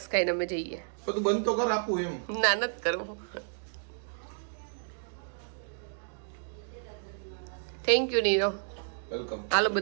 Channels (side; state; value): left; silent; digital silence